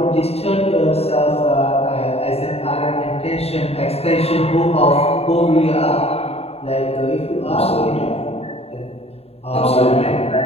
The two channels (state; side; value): late; right; 0.29 ms